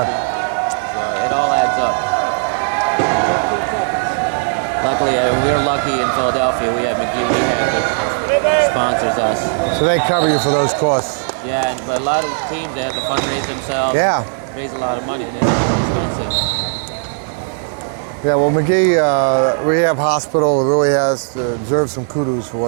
So it all adds up. Luckily, we're lucky in Philadelphia. We have McGee Rehab that sponsors us. So they cover you for those costs. Yeah, but a lot of teams, they have to fundraise themselves. Yeah. Raise a lot of money, and it's expensive. Yeah, well, McGee Rehab Hospital really deserves some kudos for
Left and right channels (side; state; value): left; silent; digital silence